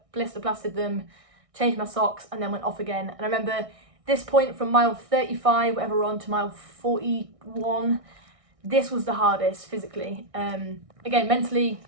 blister plastered them, changed my socks, and then went off again. And I remember this point from mile 35, whatever we're on, to mile 41, this was the hardest physically. Again, mentally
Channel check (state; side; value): late; left; 1.6 ms